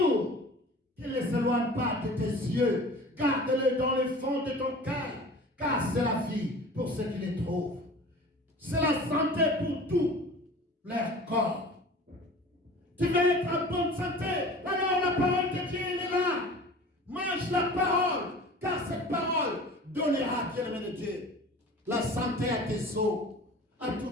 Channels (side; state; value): both; normal; correlation 0.41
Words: Qu'il ne s'éloigne pas de tes yeux. Garde-le dans les fonds de ton cœur. Car c'est la vie pour ceux qui les trouvent. C'est la santé pour tout leur corps. Tu veux être en bonne santé, alors la parole de Dieu est là. Mange la parole, car cette parole donnera, bien-aimé de Dieu, la santé à tes os, à